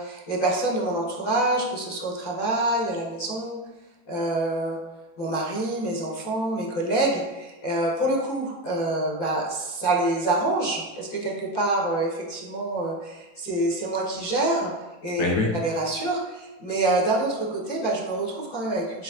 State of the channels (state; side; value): late; right; 18 ms